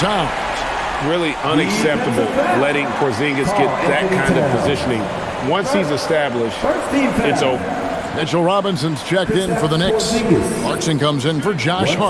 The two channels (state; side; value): identical; both; correlation 1.00